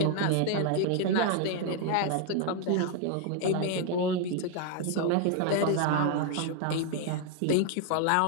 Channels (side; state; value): both; different; correlation 0.00